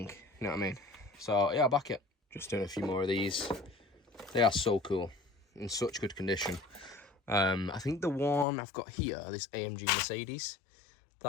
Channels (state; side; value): drops out; right; at 8.5 s